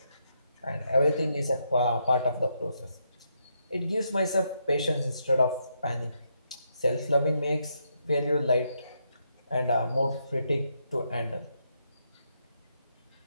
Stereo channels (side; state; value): both; inverted; correlation -0.79